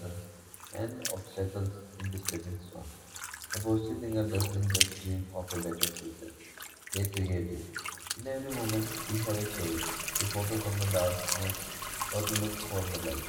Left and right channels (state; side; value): identical; both; correlation 1.00